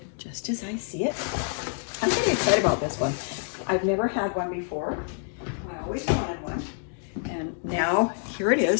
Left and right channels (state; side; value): silent; right; 60 dB below the other